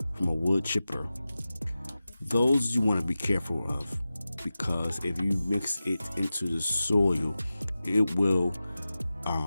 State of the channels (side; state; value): both; inverted; correlation -0.94